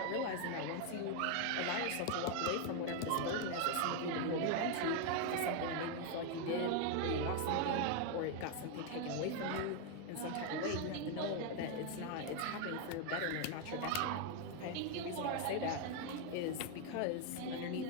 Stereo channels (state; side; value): different; both; correlation 0.01